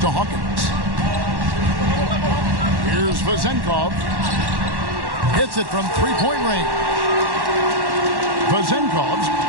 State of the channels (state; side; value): late; left; 1.1 ms